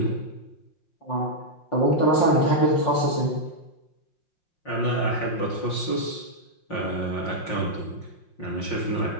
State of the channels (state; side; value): late; right; 5.6 ms